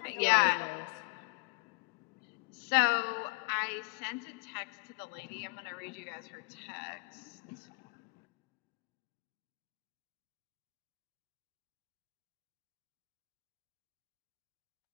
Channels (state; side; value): quieter; right; 28.8 dB